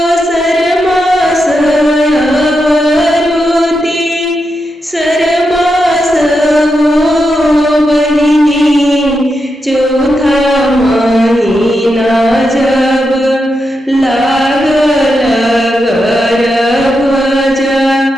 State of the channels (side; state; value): both; normal; correlation 0.86